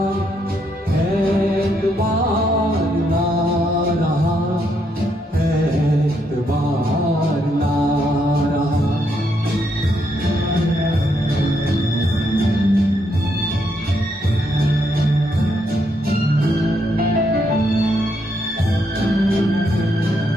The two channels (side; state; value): both; normal; correlation 0.76